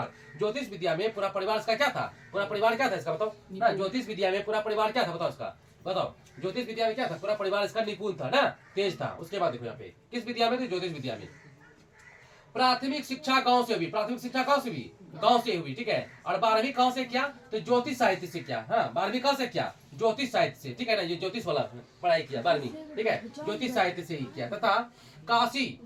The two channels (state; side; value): identical; both; correlation 1.00